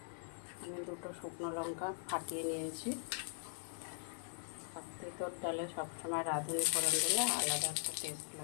আমি 2টো শুকনো লঙ্কা ফাটিয়ে নিয়েছি। তেঁতুল ডালে সবসময় রাঁধুনি ফোড়ন দিলে আলাদা একটা টেস্ট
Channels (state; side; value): silent; right; 51 dB below the other